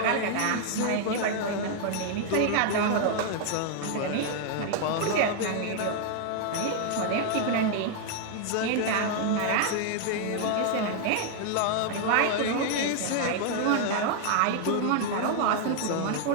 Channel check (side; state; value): both; different; correlation 0.00